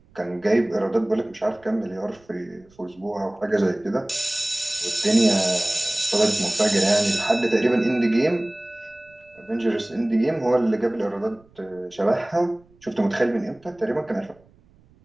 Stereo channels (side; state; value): right; noise; rumble, 30 dB below the sound